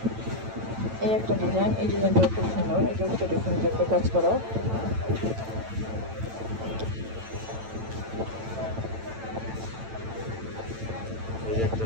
এই একটা ডিজাইন, এই ডিজাইনটা খুব সুন্দর। এটা হচ্ছে ডিফারেন্ট টাইপের কাজ করা। এই একটা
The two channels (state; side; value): late; left; 9.0 ms